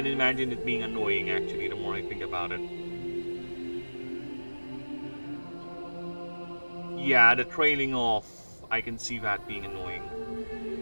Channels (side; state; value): both; inverted; correlation -1.00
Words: imagine it being annoying actually, the more I think about it. Yeah, the trailing off, I can see that being annoying.